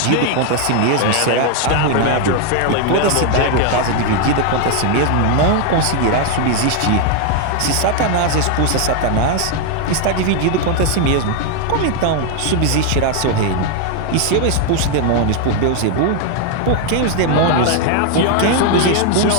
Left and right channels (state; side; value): different; both; correlation 0.00